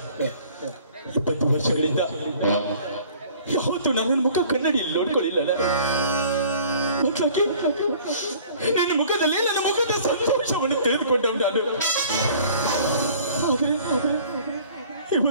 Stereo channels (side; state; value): both; inverted; correlation -0.51